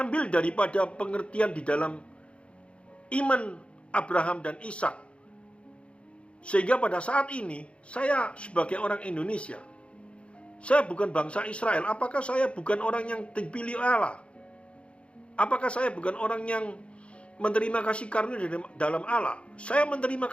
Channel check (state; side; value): late; right; 0.060 ms